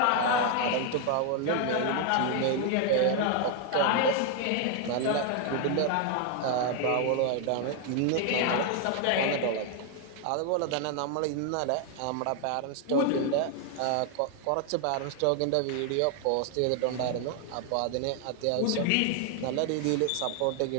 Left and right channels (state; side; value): different; both; correlation 0.00